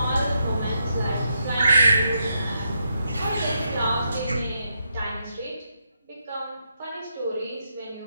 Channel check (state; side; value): inverted; both; correlation -0.81